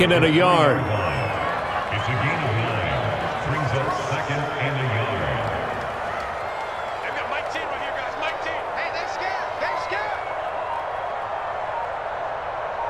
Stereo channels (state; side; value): identical; both; correlation 1.00